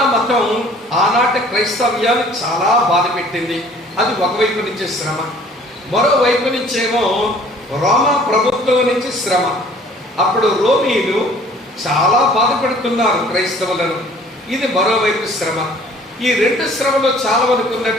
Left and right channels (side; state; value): both; normal; correlation 0.53